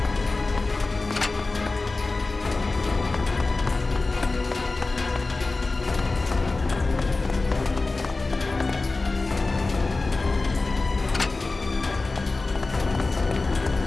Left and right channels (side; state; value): right; quieter; 3.5 dB